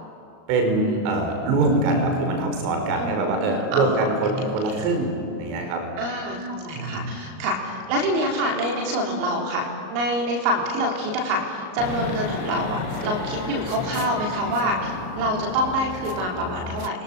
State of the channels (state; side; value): late; left; 38 ms